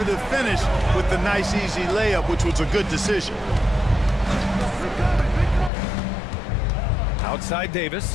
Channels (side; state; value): right; drops out; at 5.7 s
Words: finish with the nice, easy layup, which was a good decision. Outside